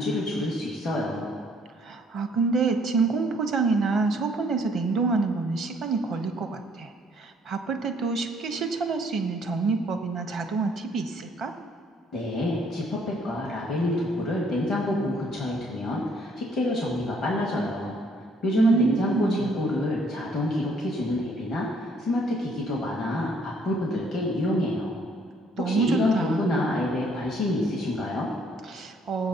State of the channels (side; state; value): both; normal; correlation 0.64